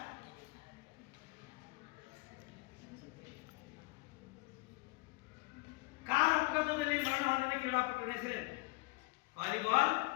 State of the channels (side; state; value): right; quieter; 25.7 dB